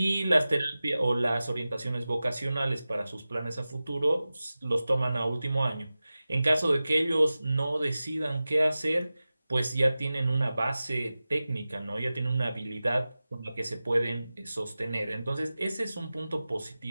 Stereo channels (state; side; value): inverted; both; correlation -0.96